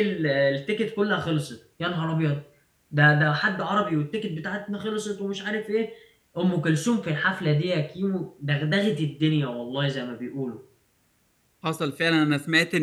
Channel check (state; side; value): identical; both; correlation 1.00